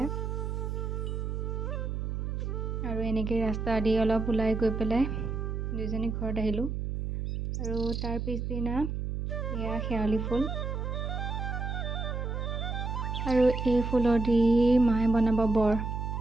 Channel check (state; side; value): noise; right; hum, 3 dB below the sound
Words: আৰু এনেকৈ ৰাস্তা দি অলপ ওলাই গৈ পেলাই দুইজনী ঘৰত আহিলোঁ আৰু তাৰ পিছদিনা এয়া শেৱালি ফুল আৰু এই ফুলৰ দি মায়ে বনাব বৰ